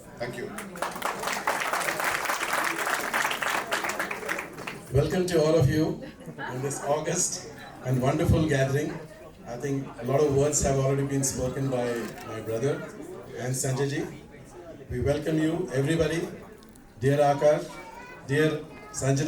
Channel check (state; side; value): identical; both; correlation 1.00